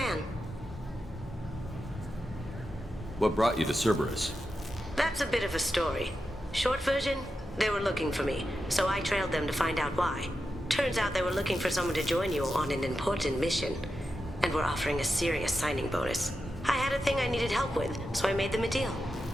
What brought you to Cerberus? That's a bit of a story. Short version, they were looking for me, so I trailed them to find out why. Turns out they were looking for someone to join you on an important mission, and were offering a serious signing bonus. I had a thing I needed help with, so I made them a deal.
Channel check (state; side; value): normal; both; correlation 0.89